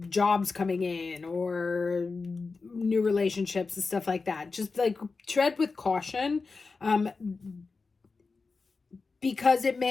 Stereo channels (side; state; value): right; quieter; 4.3 dB